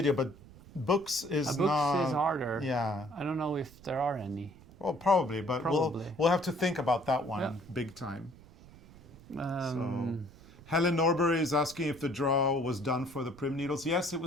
but books is not... Books is harder. Yeah. I don't know if there are any. Well, probably, but we'll have to think about that one big time. So, Helen Norbury is asking if the draw was done for the Prim Needles. Yes, it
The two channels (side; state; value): right; noise; rumble, 21 dB below the sound